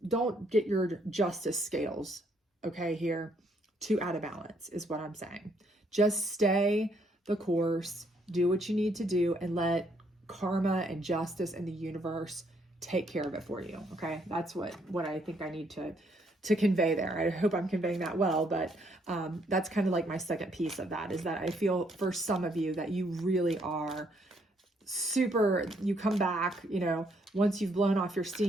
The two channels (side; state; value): both; normal; correlation 0.70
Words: don't get your justice scales, okay, here too out of balance is what I'm saying. Just stay the course, do what you need to do, and let karma and justice and the universe take care of it for you. Okay. That's what I think I need to convey there. I hope I'm conveying that well, but that's kind of like my second piece of that, is that I feel for some of you that you really are you come back, once you've blown off your